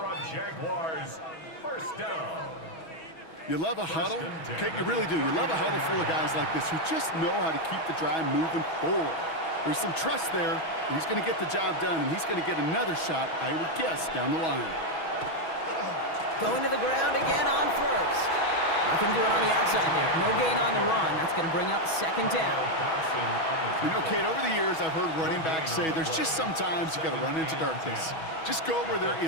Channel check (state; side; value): late; right; 6.2 ms